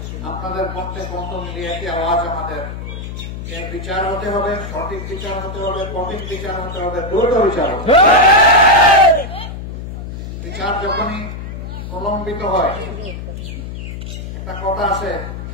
আপনাদের কণ্ঠে কণ্ঠ মিলিয়ে একটি আওয়াজ আমাদের এর বিচার হতে হবে, সঠিক বিচার হতে হবে, কঠিন বিচার হতে হবে, দ্রুত বিচার হতে হবে। বিচার যখনই প্রলম্বিত হয়, একটা কথা আছে,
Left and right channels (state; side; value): noise; left; hum, 8 dB below the sound